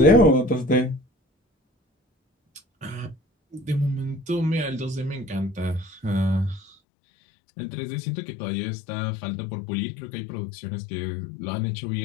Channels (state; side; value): drops out; right; at 6.8 s